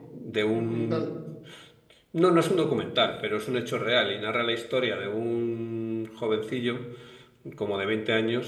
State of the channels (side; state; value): both; identical; correlation 1.00